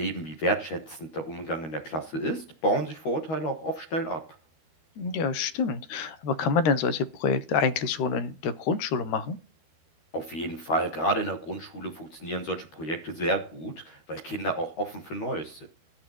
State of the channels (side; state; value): right; late; 13 ms